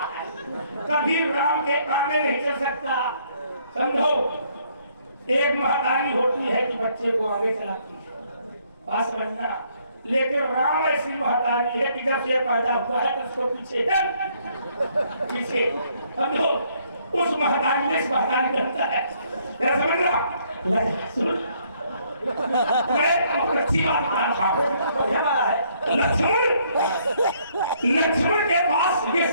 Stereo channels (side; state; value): both; inverted; correlation -0.67